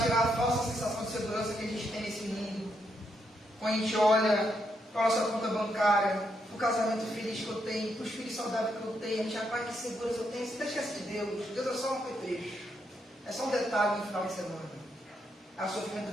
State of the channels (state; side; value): normal; both; correlation 0.79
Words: a falsa sensação de segurança que a gente tem nesse mundo. Quando a gente olha para a nossa conta bancária, para o casamento feliz que eu tenho, para os filhos saudáveis que eu tenho, a gente já vai, que segurança eu tenho. Você não esquece de Deus. Deus é só um petrecho, é só um detalhe no final de semana. Aí o